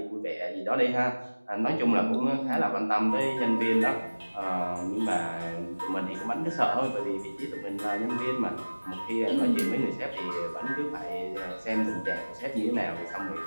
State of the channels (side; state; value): both; inverted; correlation -1.00